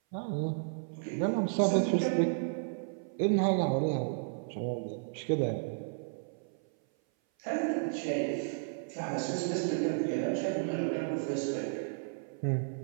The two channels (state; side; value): silent; left; 56 dB below the other